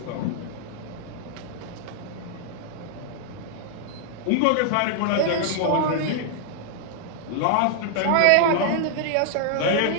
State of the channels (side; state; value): both; different; correlation 0.00